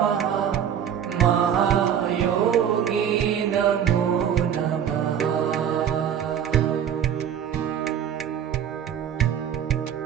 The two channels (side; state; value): left; quieter; 9.0 dB